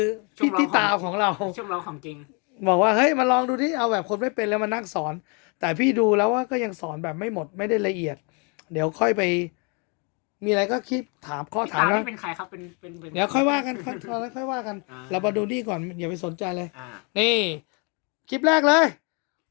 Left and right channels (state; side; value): quieter; right; 33.9 dB